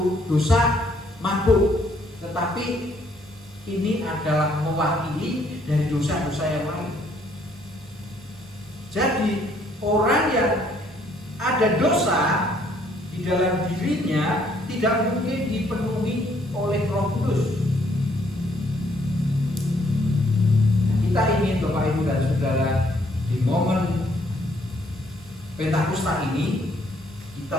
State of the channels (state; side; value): normal; both; correlation 0.66